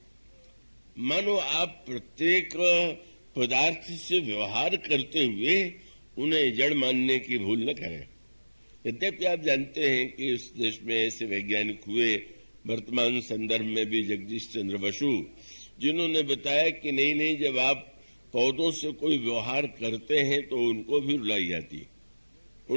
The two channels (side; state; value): both; inverted; correlation -1.00